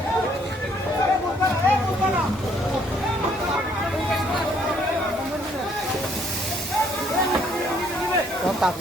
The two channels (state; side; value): normal; both; correlation 0.66